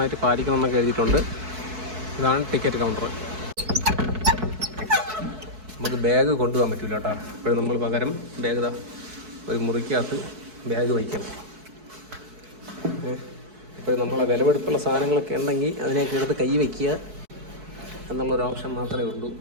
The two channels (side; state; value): left; late; 4.6 ms